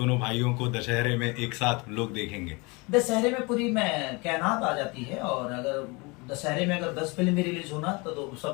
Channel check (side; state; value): right; quieter; 27.4 dB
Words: भाइयों को दशहरे में एक साथ लोग देखेंगे? दशहरे में पूरी में कायनात आ जाती है, और अगर दशहरे में अगर 10 फिल्म भी रिलीज होना तो